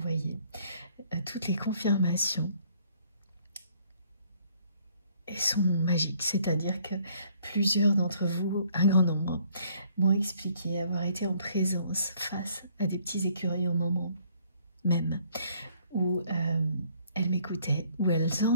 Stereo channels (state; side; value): inverted; both; correlation -0.63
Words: toutes les confirmations. Elles sont magiques, c'est-à-dire que plusieurs d'entre vous, un grand nombre, m'ont expliqué avoir été en présence face à des petits écureuils au moment même où elles m'écoutaient, où elles